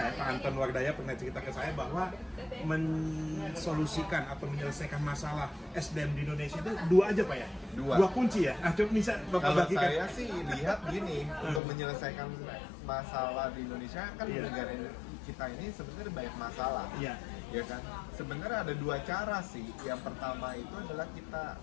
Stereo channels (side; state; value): right; drops out; at 11.6 s